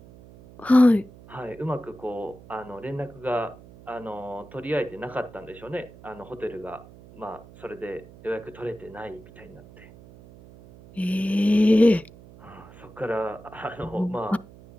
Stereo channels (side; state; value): right; noise; hum, 20 dB below the sound